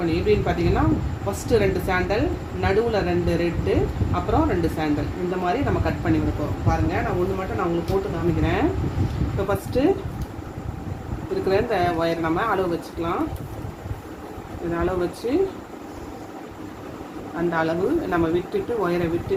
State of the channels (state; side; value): identical; both; correlation 1.00